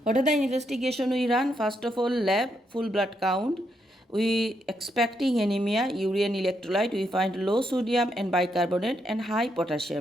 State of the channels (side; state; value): both; normal; correlation 0.79